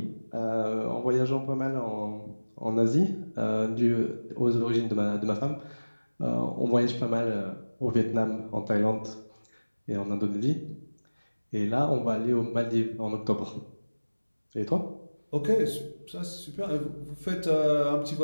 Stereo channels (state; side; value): inverted; both; correlation -1.00